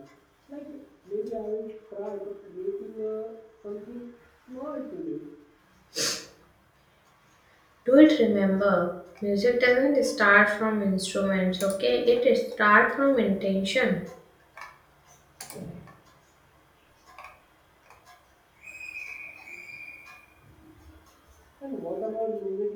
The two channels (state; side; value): identical; both; correlation 1.00